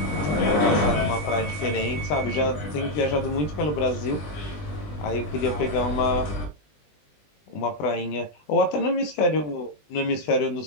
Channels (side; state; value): right; late; 20 ms